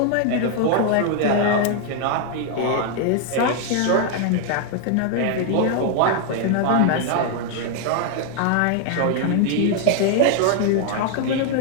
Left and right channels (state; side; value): different; both; correlation 0.00